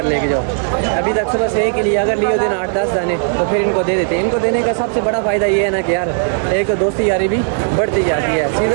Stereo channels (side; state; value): left; silent; digital silence